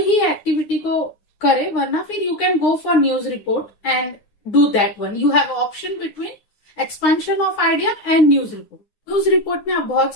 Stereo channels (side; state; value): right; late; 9.8 ms